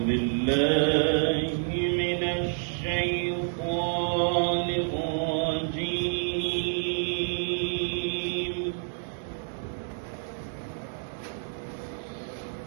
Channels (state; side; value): silent; left; digital silence